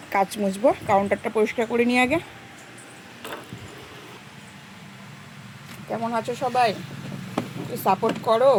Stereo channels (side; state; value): both; identical; correlation 1.00